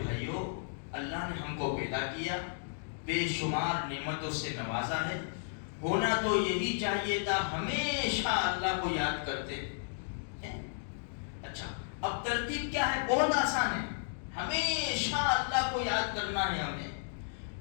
بھائیوں اللہ نے ہم کو پیدا کیا، بے شمار نعمتوں سے نوازا ہے، ہونا تو یہی چاہیے تھا ہمیشہ اللہ کو یاد کرتے ہیں۔ اچھا اب ترتیب کیا ہے؟ بہت آسان ہے، ہمیشہ اللہ کو یاد کرنا ہے ہمیں۔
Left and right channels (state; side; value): silent; right; digital silence